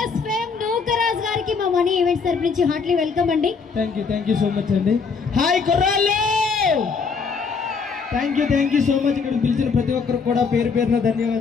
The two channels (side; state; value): right; quieter; 5.3 dB